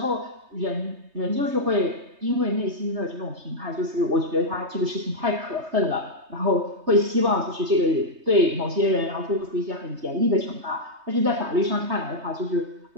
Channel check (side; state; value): left; late; 3.2 ms